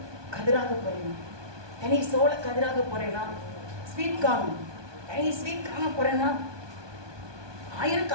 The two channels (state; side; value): late; left; 1.2 ms